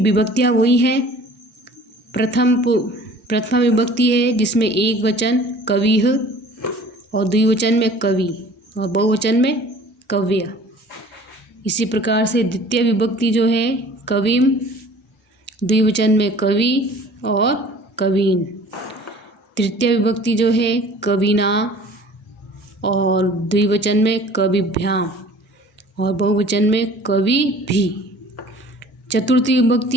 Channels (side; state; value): both; normal; correlation 0.48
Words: वही हैं, प्रथमा विभक्ति है जिसमें एक वचन कविः और द्विवचन में कवि और बहुवचन में कव्य। इसी प्रकार से द्वितीय विभक्ति जो है कविम, द्विवचन में कवि और कवीन। तृतीय विभक्ति जो है कविना और द्विवचन में कविभ्याम और बहुवचन में कवि भी। चतुर्थी